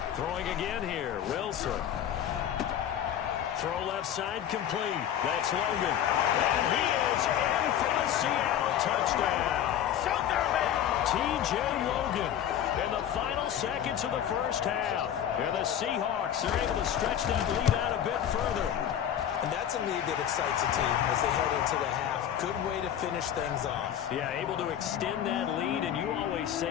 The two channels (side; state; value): right; quieter; 10.2 dB